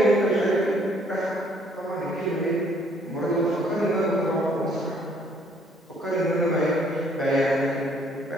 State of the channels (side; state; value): both; normal; correlation 0.63